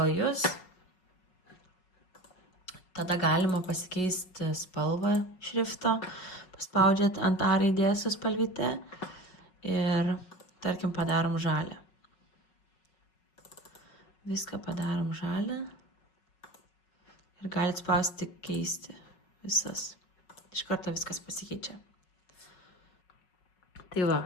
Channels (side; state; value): right; late; 5.4 ms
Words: jūs. Tada galima pasikeisti spalvą šrifto. Paspaudžiat ant A raidės su spalvyte. Ir tarkim padarom žalią. Viską padarom žalią. Ir galit spausti keisti visas. Iš karto viskas pasikeičia. Tai va,